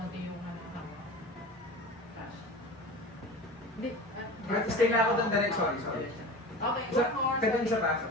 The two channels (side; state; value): both; normal; correlation 0.33